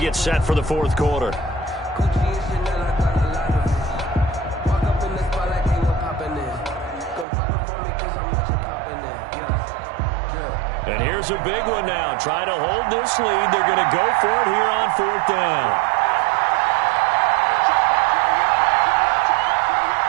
set for the 4th quarter. And here's a big one now. Trying to hold this lead. They're going to go for it here on 4th down.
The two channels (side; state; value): left; drops out; at 7.2 s